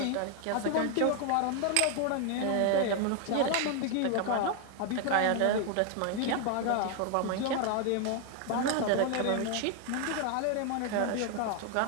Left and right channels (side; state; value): both; different; correlation 0.00